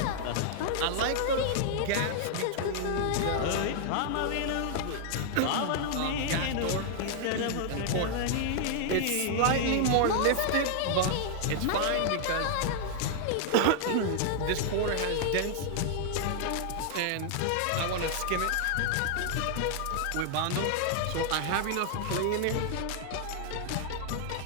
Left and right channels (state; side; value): different; both; correlation 0.00